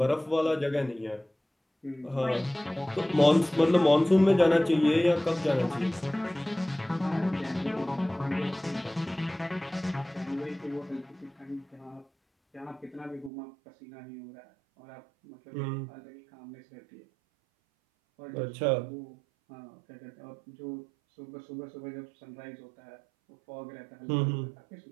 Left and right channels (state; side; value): drops out; left; at 13.3 s